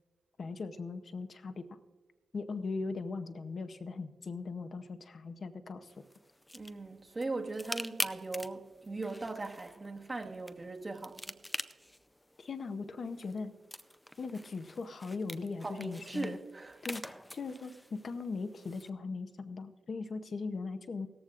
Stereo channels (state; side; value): normal; both; correlation 0.91